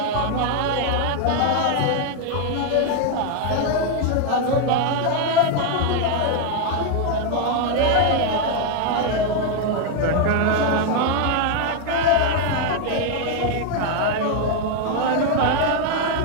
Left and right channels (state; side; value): different; both; correlation 0.01